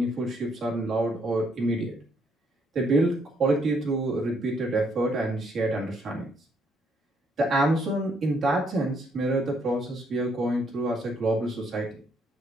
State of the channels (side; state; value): both; normal; correlation 0.71